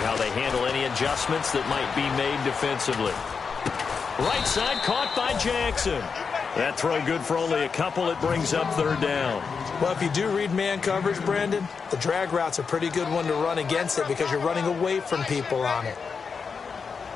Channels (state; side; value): quieter; right; 5.5 dB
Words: how they handle any adjustments that might be made defensively. Right side caught by Jackson. That throw good for only a couple. It brings up third down. Well, if you do read man coverage, Brandon, the drag route's a pretty good one to run against it because you're running away from people on it.